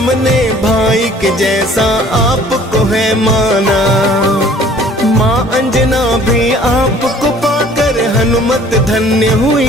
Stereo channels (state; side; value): normal; both; correlation 0.53